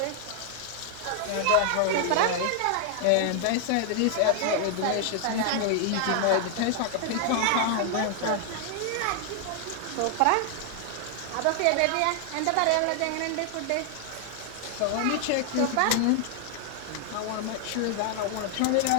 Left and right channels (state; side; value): different; both; correlation 0.00